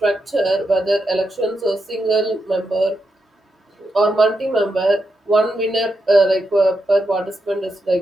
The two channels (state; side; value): normal; both; correlation 0.85